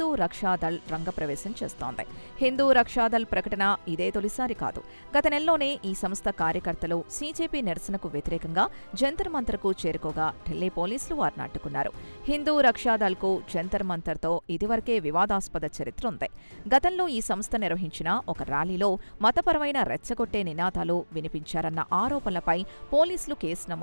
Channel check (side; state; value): both; inverted; correlation -1.00